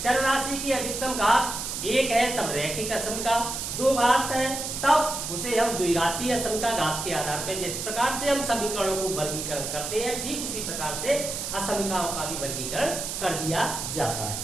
चर राशि की अधिकतम घात एक है तब रैखिक असमिका, दो घात है तब उसे हम द्विघातीय असमिका घात के आधार पर, जिस प्रकार से हम समीकरणों को वर्गीकरण करते हैं ठीक उसी प्रकार से असमिकाओं का भी वर्गीकरण कर दिया जाता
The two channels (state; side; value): noise; right; hiss, 5 dB below the sound